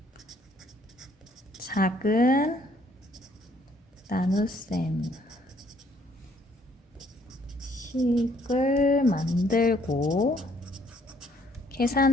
작은 나눗셈 식을 만들고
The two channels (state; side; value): normal; both; correlation 0.64